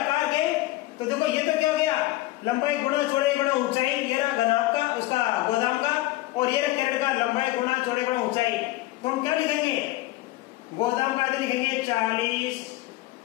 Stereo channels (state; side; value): quieter; right; 17.8 dB